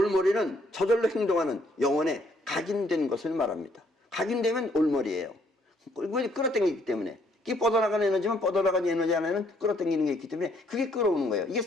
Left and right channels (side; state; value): both; normal; correlation 0.68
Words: 저절로 행동하는 영혼에 각인된 것을 말합니다. 각인되면 올머리예요. 끌어당기기 때문에. 이게 뻗어나가는 에너지면 뻗어나가는 에너지 안에는 끌어당기는 게 있기 때문에 그게 끌어오는 거예요. 이게